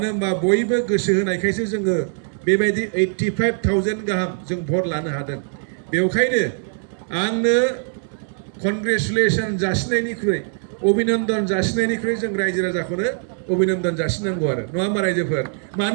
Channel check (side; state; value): left; silent; 55 dB below the other